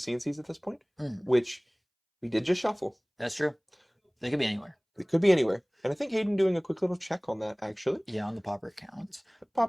at this point, which we did just shuffle. That's true. They could be anywhere. It could be anywhere. And I think Hayden doing a quick little check on that, actually. Yeah, on the popper count.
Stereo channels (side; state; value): both; identical; correlation 1.00